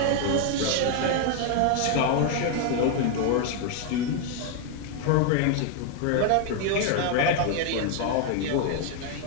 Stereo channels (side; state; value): both; different; correlation 0.01